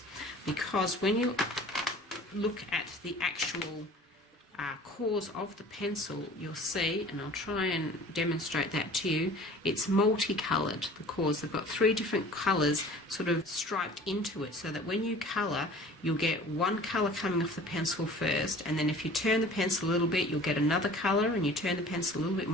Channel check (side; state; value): both; normal; correlation 0.46